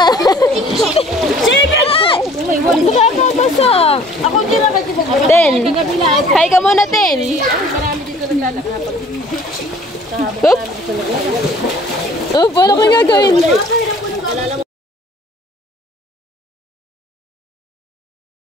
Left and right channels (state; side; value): normal; both; correlation 0.53